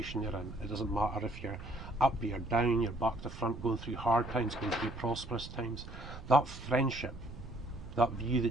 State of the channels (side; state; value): right; noise; rumble, 12 dB below the sound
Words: you're in. It doesn't matter if you're up, you're down, you're back to front, going through hard times, going through prosperous times. That friendship, that view